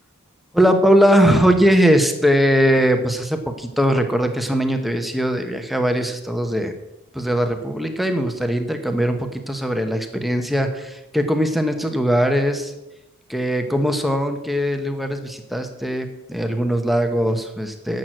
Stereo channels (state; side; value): normal; both; correlation 0.83